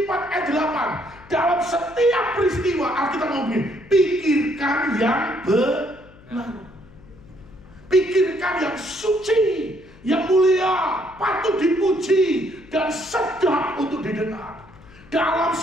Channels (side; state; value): left; noise; hum, 23 dB below the sound